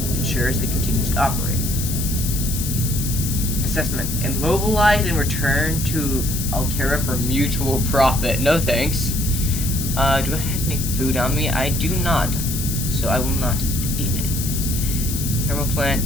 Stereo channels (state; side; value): noise; left; hiss, 5 dB below the sound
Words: ensures it continues to operate. Assessment. Immobilize and return to Altera for mutual profit. No thanks. Do I have any food on me? I do not, so I will not eat any. Thermoplant,